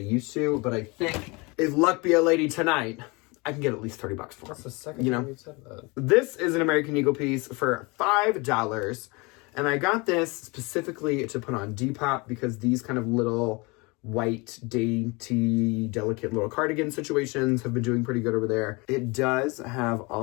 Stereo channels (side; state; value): right; quieter; 27.1 dB